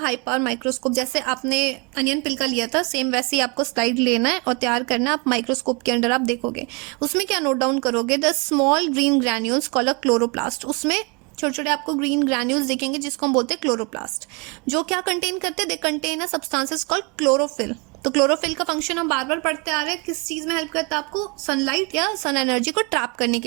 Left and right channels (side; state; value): left; quieter; 31.8 dB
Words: high power microscope. जैसे आपने अनियन पिल का लिया था सेम वैसे ही आपको स्लाइड लेना है और तैयार करना है। आप माइक्रोस्कोप के अंडर आप देखोगे उसमें क्या नोट डाउन करोगे? The small green granules called a chloroplast. उसमें छोटे छोटे आपको ग्रीन ग्रैन्यूल्स दिखेंगे जिसको हम बोलते हैं क्लोरोप्लास्ट। जो क्या कंटेन करते हैं? They contain a substances called chlorophyll. तो क्लोरोफिल का फंक्शन हम बार बार पढ़ते आ रहे हैं, किस चीज में हेल्प करता है आपको? सनलाइट या सन एनर्जी को ट्रैप करने